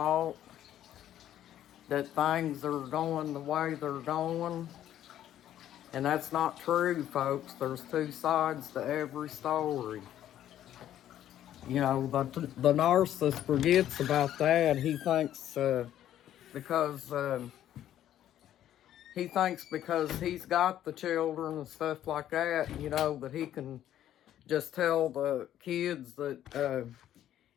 that things are going the way they're going. And that's not true, folks. There's two sides to every story. You know, the narcissist forgets about that. Because he thinks because he's got the children and stuff like that, you know, that he can just tell the kids that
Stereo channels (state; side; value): quieter; right; 11.7 dB